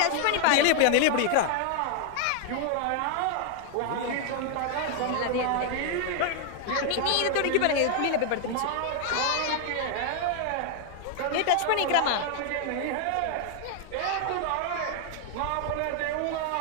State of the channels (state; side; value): different; both; correlation 0.00